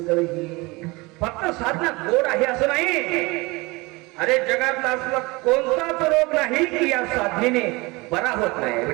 ही. फक्त साधना गोड आहे असं नाही. अरे जगातला असला कोणताच रोग नाही की या साधनेने बरा होत नाही.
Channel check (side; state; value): left; quieter; 24.1 dB